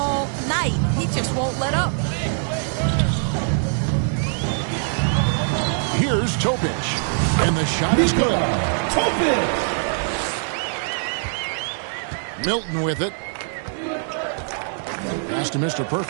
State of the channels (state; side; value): silent; left; 61 dB below the other